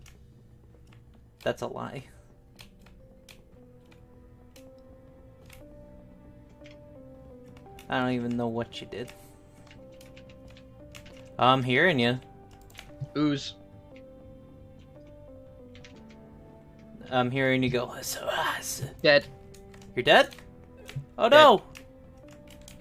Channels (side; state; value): both; identical; correlation 1.00